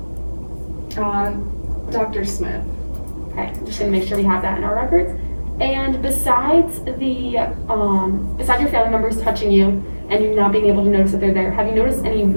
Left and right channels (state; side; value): inverted; both; correlation -1.00